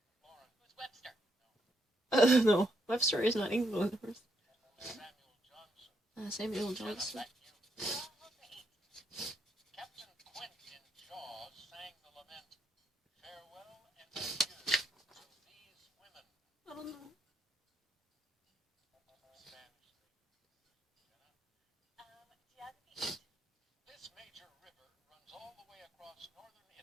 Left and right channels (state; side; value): normal; both; correlation 0.77